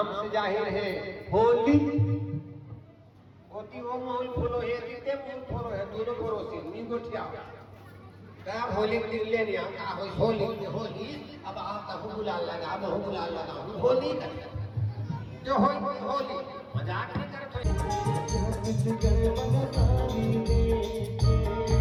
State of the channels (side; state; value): both; identical; correlation 1.00